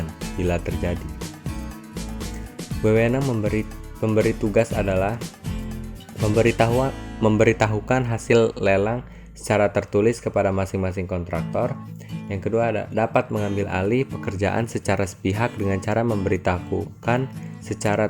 bila terjadi. Wewenang pemberi tugas adalah memberitahukan hasil lelang secara tertulis kepada masing-masing kontraktor. Yang kedua ada dapat mengambil alih pekerjaan secara sepihak dengan cara memberitahukan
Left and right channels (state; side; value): identical; both; correlation 1.00